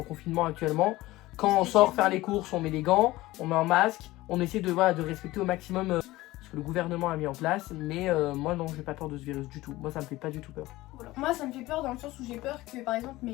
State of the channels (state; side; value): quieter; right; 18.2 dB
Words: confinement actuellement. Quand on sort faire les courses, on met des gants, on met un masque, on essaie de respecter au maximum ce que le gouvernement a mis en place. Mais moi non, j'ai pas peur de ce virus du tout. Moi, ça me fait pas du tout peur. Moi ça me fait peur dans le sens où j'ai peur que par exemple